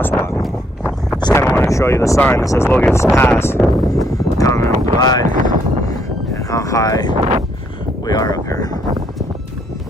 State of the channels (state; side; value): normal; both; correlation 0.71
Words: Just kind of want to show you the sign that says Logan Pass. Continental Glide, and how high we are up here.